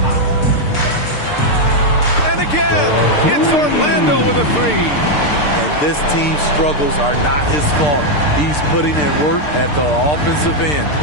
And again, it's Orlando with a 3. And this team's struggles are not his fault. He's putting in work at the offensive end.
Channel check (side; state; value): right; late; 6.7 ms